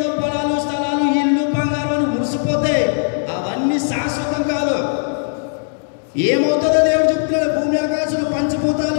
పొలాలు, స్థలాలు, ఇల్లు, బంగారం మురిసిపోతే అవన్నీ శాశ్వతం కాదు. ఏమవుతుందో దేవుడు చెప్తున్నాడు. భూమి ఆకాశాలు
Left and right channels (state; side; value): silent; right; digital silence